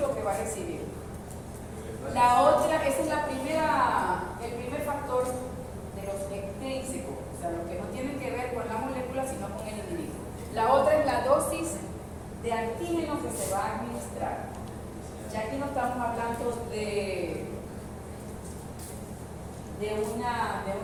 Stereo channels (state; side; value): identical; both; correlation 1.00